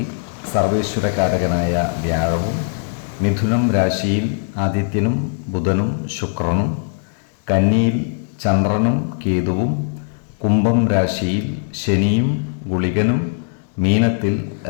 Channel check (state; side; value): silent; right; digital silence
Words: സർവേശ്വരകാരകനായ വ്യാഴവും, മിഥുനം രാശിയിൽ ആദിത്യനും ബുധനും ശുക്രനും, കന്നിയിൽ ചന്ദ്രനും കേതുവും, കുംഭം രാശിയിൽ ശനിയും ഗുളികനും, മീനത്തിൽ